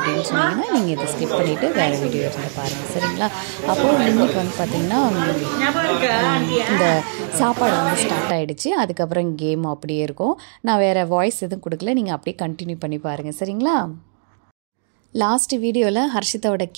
சொன்னீங்கன்னா நீங்கள் இதை ஸ்கிப் பண்ணிவிட்டு வேறு வீடியோ எடுத்து பாருங்கள், சரிங்களா? அப்புறம் இன்னைக்கு வந்து பார்த்தீங்கன்னா இந்த சாப்பாடு வந்து ஸ்டார்ட் ஆகிடுச்சு. அதுக்கப்புறம் கேம் அப்படியே இருக்கும். நான் வேறு வாய்ஸ் எதுவும் கொடுக்கல, நீங்கள் அப்படியே கண்டினியூ பண்ணி பாருங்கள், சரிங்களா? லாஸ்ட் வீடியோவில் ஹர்ஷிதாவோட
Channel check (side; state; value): left; silent; digital silence